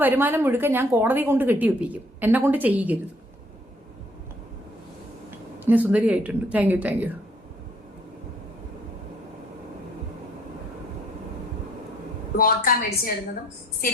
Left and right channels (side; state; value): both; normal; correlation 0.63